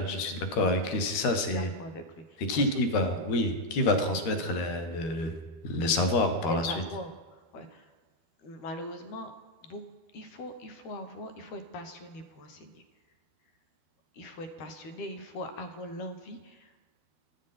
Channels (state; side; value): late; right; 12 ms